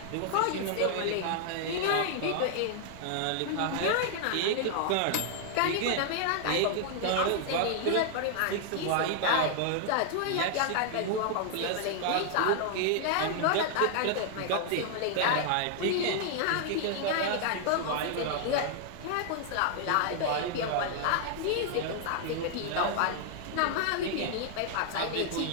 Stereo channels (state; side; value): different; both; correlation 0.00